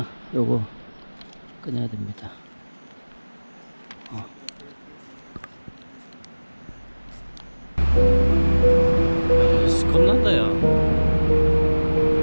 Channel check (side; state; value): both; inverted; correlation -1.00